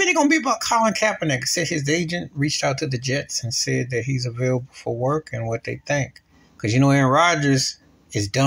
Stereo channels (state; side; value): identical; both; correlation 1.00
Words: gonna be about Colin Kaepernick. Said his agent reached out to the Jets and said that he's available for work and what they think. Because Aaron Rodgers is